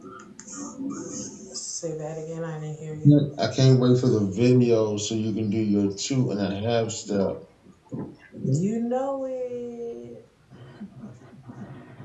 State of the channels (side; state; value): both; identical; correlation 1.00